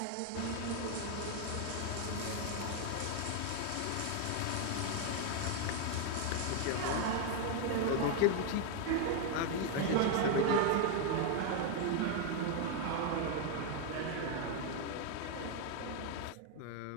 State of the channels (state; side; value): different; both; correlation 0.00